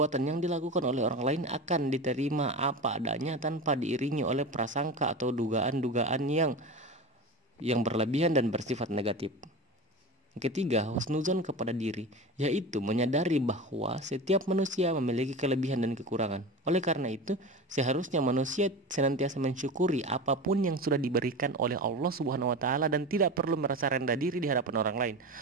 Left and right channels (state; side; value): normal; both; correlation 0.28